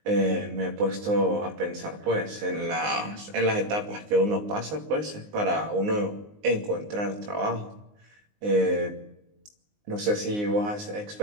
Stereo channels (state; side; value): late; left; 19 ms